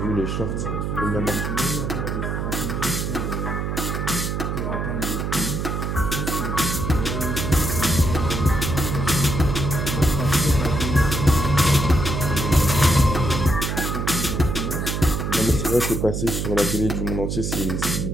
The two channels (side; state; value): right; noise; hum, 2 dB below the sound